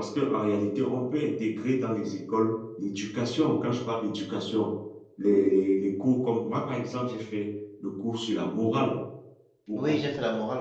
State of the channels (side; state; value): both; identical; correlation 1.00